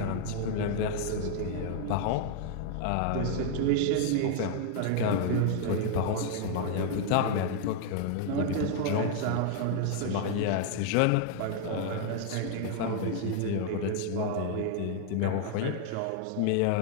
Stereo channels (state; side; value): different; both; correlation 0.00